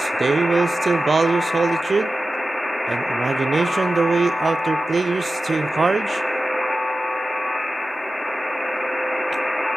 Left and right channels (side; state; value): both; normal; correlation 0.94